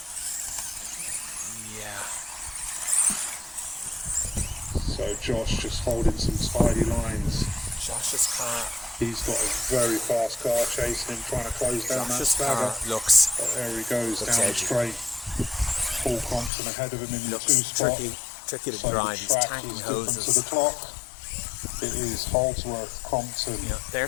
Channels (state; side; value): drops out; right; at 16.5 s